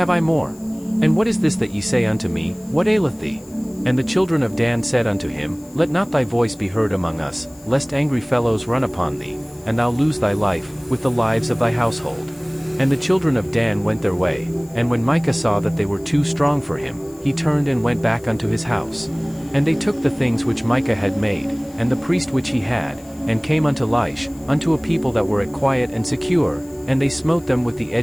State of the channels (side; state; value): left; noise; hiss, 25 dB below the sound